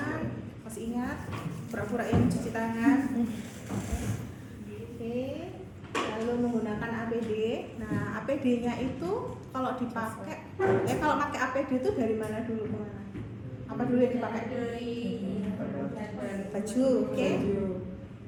Masih ingat? Pura-pura yang mencuci tangan. Oke. Lalu menggunakan APD. Nah, APD-nya itu kalau dipakai, kalau pakai APD itu dari mana dulu ke mana? Apa dulu yang dipakai? Baju, oke?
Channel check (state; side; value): identical; both; correlation 1.00